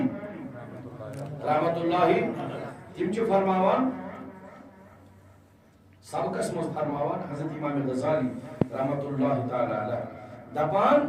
رحمت اللہ تِم چھِ فرماوان سبقس منٛز فرماوان حضرت امام غزالی رحمت اللہ تعالیٰ علیہ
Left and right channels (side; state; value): both; identical; correlation 1.00